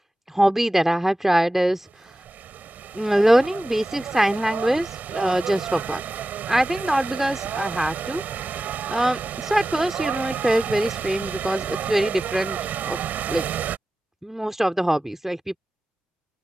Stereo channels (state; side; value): normal; both; correlation 0.94